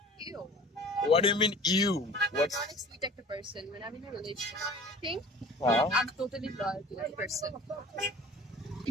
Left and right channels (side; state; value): both; normal; correlation 0.43